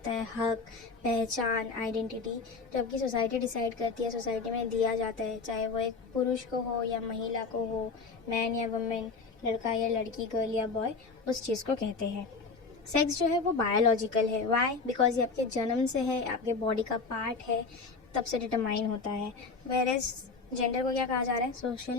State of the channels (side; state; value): right; quieter; 4.4 dB